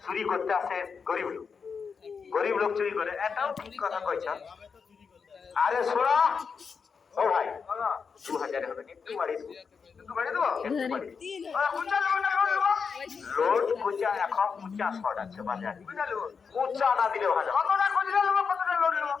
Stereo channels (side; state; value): right; quieter; 5.7 dB